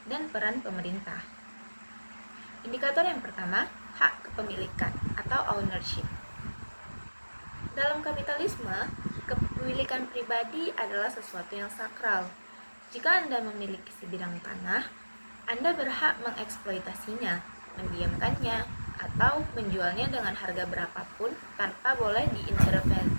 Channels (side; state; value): both; inverted; correlation -1.00